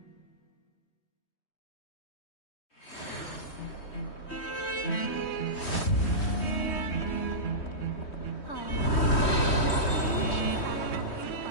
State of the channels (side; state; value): right; late; 3.1 ms